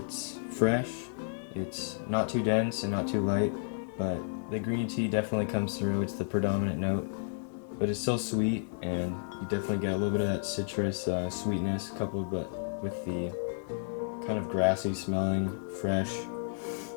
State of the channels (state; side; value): silent; right; digital silence